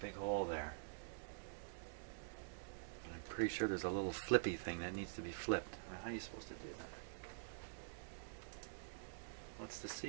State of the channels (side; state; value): left; silent; digital silence